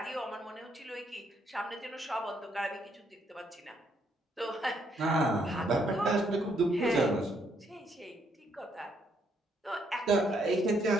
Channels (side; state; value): both; normal; correlation 0.72